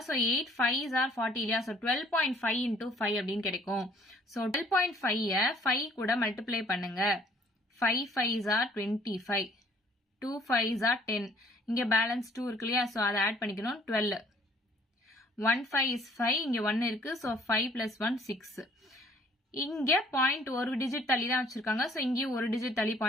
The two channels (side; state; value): both; normal; correlation 0.59